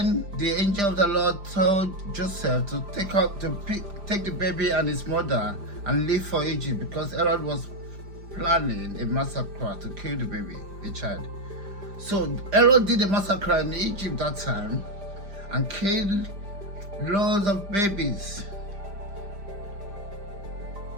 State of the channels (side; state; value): left; late; 5.0 ms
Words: the angel of the Lord told Joseph to take the baby and his mother and leave for Egypt because Herod was planning a massacre to kill the baby, the child. So Herod did a massacre in Egypt that time and killed loads of babies